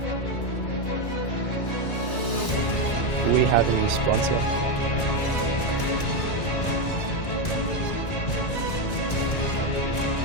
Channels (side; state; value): right; late; 1.9 ms